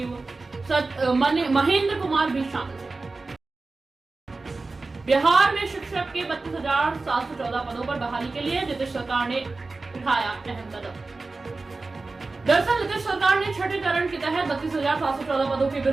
महेंद्र कुमार भी शामिल थे। बिहार में शिक्षक के 32,714 पदों पर बहाली के लिए नीतीश सरकार ने उठाया अहम कदम। दरअसल नीतीश सरकार ने छठे चरण के तहत 32,714 पदों के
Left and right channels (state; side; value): quieter; left; 3.6 dB